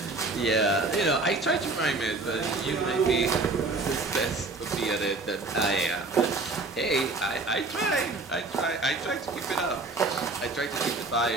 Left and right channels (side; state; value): left; quieter; 3.4 dB